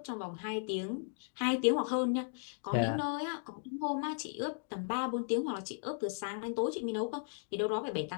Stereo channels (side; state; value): right; silent; digital silence